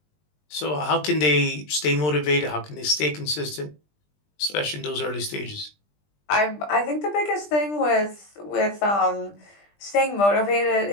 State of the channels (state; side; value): late; right; 20 ms